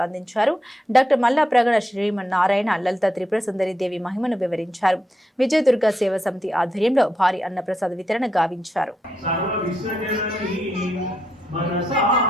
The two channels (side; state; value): both; normal; correlation 0.83